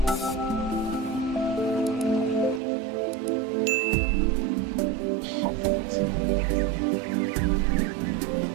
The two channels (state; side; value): drops out; left; at 2.6 s